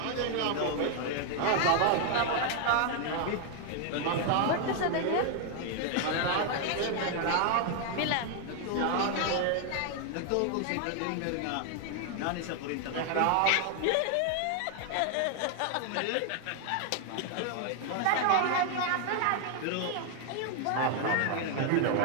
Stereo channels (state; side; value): different; both; correlation 0.00